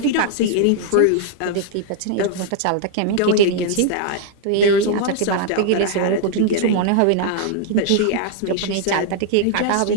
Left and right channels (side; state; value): both; different; correlation -0.01